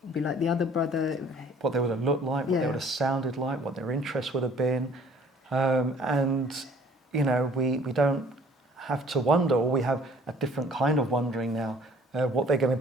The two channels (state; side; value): normal; both; correlation 0.54